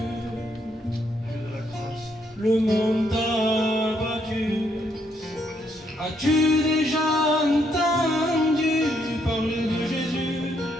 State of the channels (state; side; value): normal; both; correlation 0.73